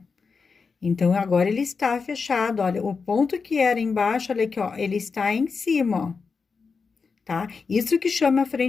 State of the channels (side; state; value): right; quieter; 5.0 dB